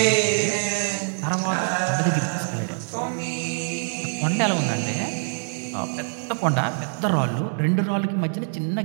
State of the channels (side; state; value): left; silent; digital silence